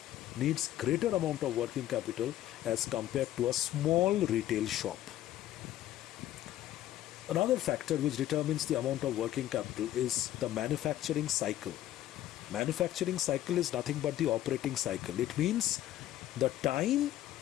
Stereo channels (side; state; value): right; quieter; 13.2 dB